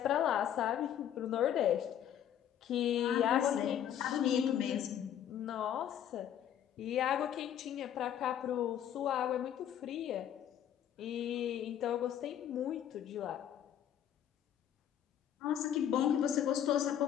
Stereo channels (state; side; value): quieter; right; 10.1 dB